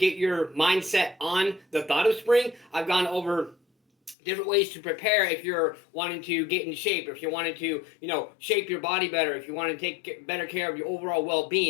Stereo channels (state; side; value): drops out; right; at 4.2 s